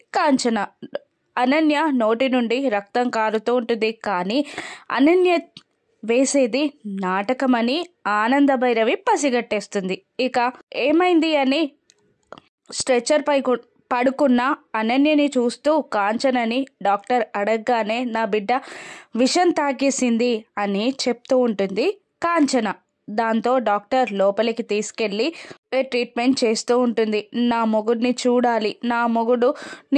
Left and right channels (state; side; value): identical; both; correlation 1.00